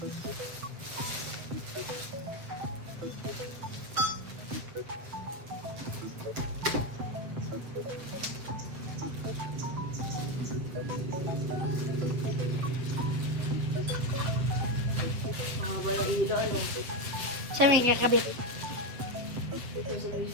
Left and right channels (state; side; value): late; left; 7.8 ms